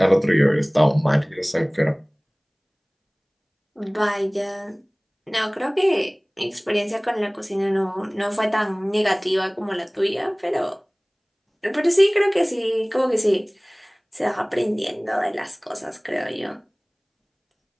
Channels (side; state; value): both; identical; correlation 1.00